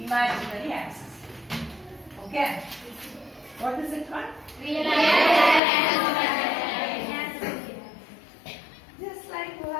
imaginary axis. Okay? What is it called? Just like you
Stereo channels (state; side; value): drops out; right; at 5.6 s